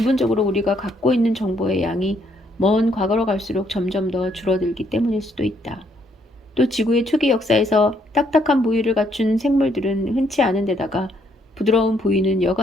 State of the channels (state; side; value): normal; both; correlation 0.70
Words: 우리가 갖고 있는 정보의 양이 먼 과거로 갈수록 점점 더 줄어들기 때문일 수도 있다. 또 지구의 초기 역사에서 딱딱한 부위를 갖춘 생물들은 흔치 않은 데다가 부드러운 부위는